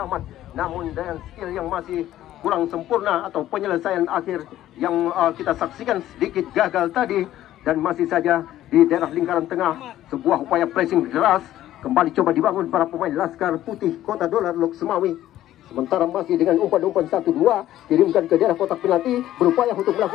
Namun dengan skill yang masih kurang sempurna atau penyelesaian akhir yang kita saksikan sedikit gagal tadi. Dan masih saja di daerah lingkaran tengah sebuah upaya pressing deras kembali coba dibangun para pemain Laskar Putih Kota Dolar Lok Semawe. Sementara masih dengan umpan-umpan 1-2 kirimkan ke daerah kotak penalti, berupaya untuk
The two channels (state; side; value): quieter; right; 13.3 dB